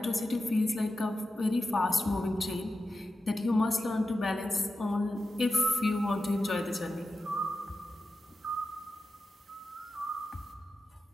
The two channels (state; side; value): normal; both; correlation 0.91